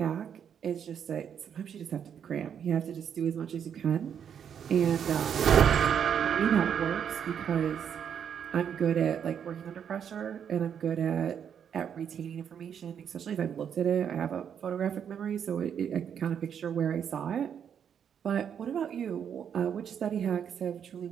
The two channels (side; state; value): left; quieter; 8.2 dB